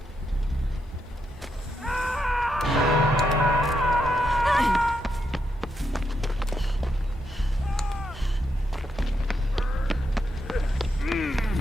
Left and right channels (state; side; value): normal; both; correlation 0.82